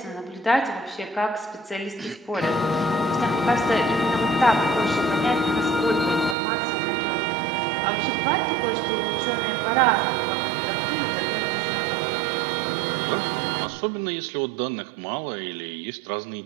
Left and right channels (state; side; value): drops out; left; at 6.4 s